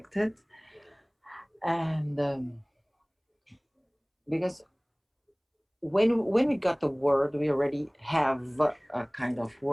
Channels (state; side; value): identical; both; correlation 1.00